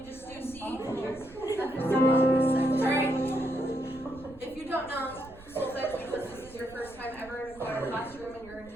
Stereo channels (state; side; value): noise; right; rumble, 21 dB below the sound